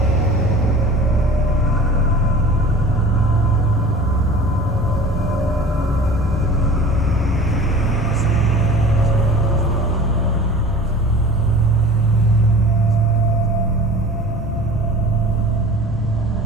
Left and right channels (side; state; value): both; normal; correlation 0.41